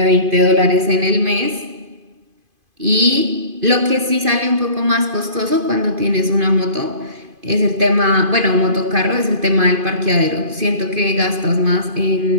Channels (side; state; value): left; late; 2.5 ms